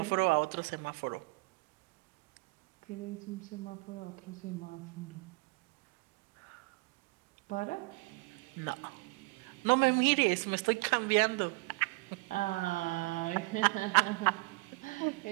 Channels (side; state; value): left; quieter; 27.1 dB